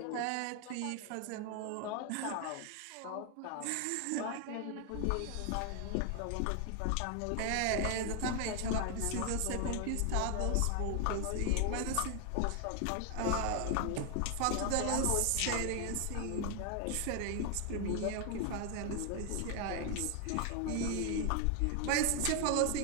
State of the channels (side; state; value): both; different; correlation 0.00